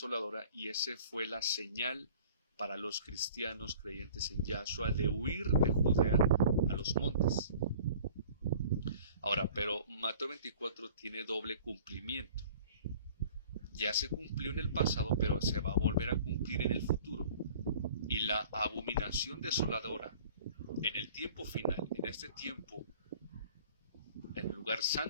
y esa fue la señal para los cristianos creyentes en Yahshua de huir de Judea a los montes. Ahora, pero Mateo 24 tiene doble cumplimiento. Ya se cumplió en el pasado, pero se va a volver a cumplir en el futuro. Y la abominación desoladora en el tiempo final, en este tiempo, en el lugar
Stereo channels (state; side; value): inverted; both; correlation -0.48